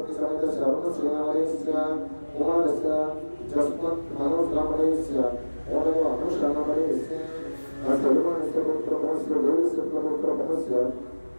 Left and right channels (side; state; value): both; inverted; correlation -1.00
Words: समेतस्य अरुणश्रीनामलयस्य कुमारस्य जस्मत् मनोजनामलयस्य ओनव अनुषानामलयस्य असेल्वानस्य पुत्रमोस्य देवस्य पुत्रमोस्य